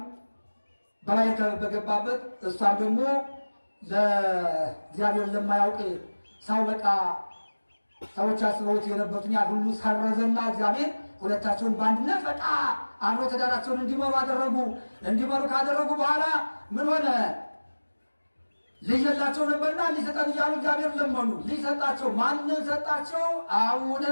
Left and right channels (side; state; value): both; inverted; correlation -1.00